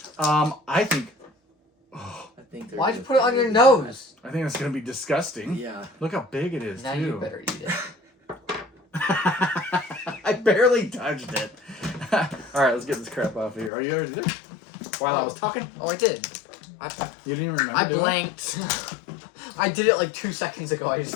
I think Why'd you put it on your nose? I think that's gonna be disgusting. Yeah. Look how big it is. Now too. you better eat it. I barely touched it. All right, let's get this crap off of here. Are you ready to do it? While I was talking? Oh, I did. You didn't even remember I doing blanked. I did it like 2 seconds ago. I just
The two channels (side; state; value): right; drops out; at 13.7 s